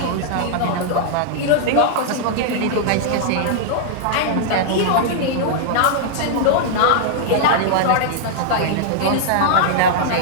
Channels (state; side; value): different; both; correlation -0.01